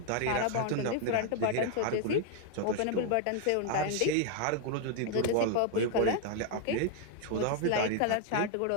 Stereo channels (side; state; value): both; different; correlation 0.00